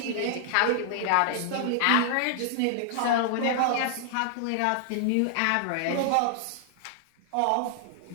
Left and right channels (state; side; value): different; both; correlation -0.01